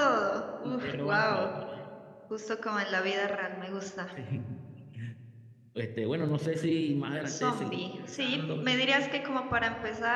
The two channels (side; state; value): both; identical; correlation 1.00